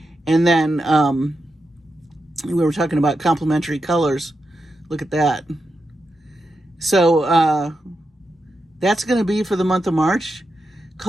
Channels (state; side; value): normal; both; correlation 0.87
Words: And then we were talking about complementary colors. Look at that. So that's going to be for the month of March.